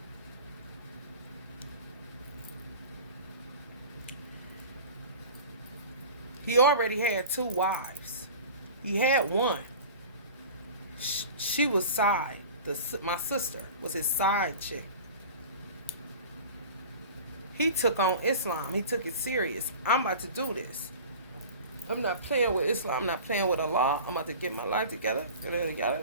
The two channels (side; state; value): both; inverted; correlation -0.39